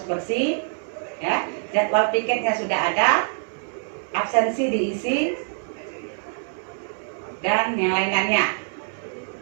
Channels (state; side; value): silent; left; digital silence